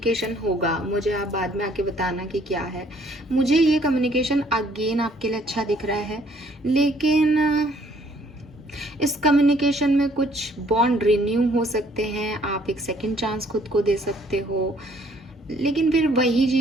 होगा। मुझे आप बाद में आके बताना कि क्या है। मुझे ये कम्युनिकेशन अगेन आपके लिए अच्छा दिख रहा है, लेकिन इस कम्युनिकेशन में कुछ बॉन्ड रिन्यू हो सकते हैं, आप एक सेकंड चांस खुद को दे सकते हो, लेकिन फिर वही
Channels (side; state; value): both; normal; correlation 0.62